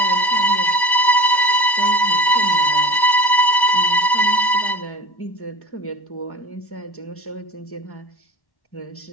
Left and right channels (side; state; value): right; late; 1.1 ms